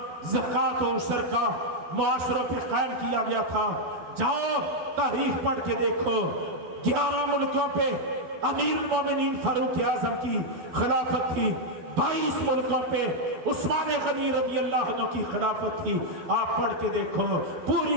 زکوٰۃ و عشر کا معاشروں پہ قائم کیا گیا تھا۔ جاؤ تاریخ پڑھ کے دیکھو، 11 ملکوں پہ امیر المومنین فاروق اعظم کی خلافت تھی، 22 ملکوں پہ عثمان غنی رضی اللہ عنہ کی خلافت تھی۔ آپ پڑھ کے دیکھو،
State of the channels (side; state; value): left; late; 12 ms